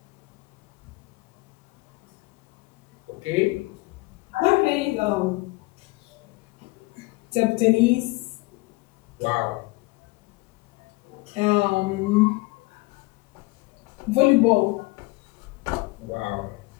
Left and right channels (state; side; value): quieter; right; 23.3 dB